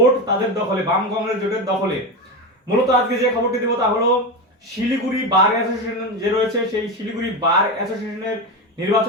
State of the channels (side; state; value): both; normal; correlation 0.17